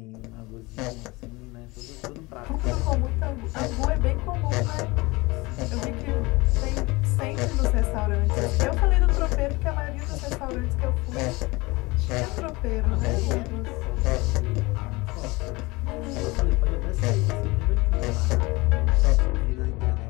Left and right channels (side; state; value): right; quieter; 23.2 dB